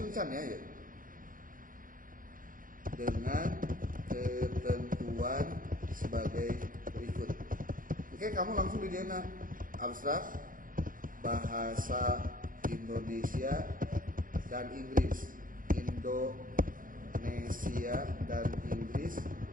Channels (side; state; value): left; late; 0.40 ms